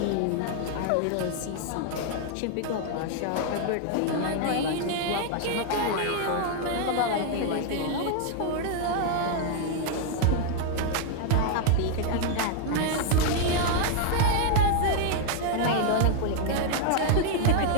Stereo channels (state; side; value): different; both; correlation 0.00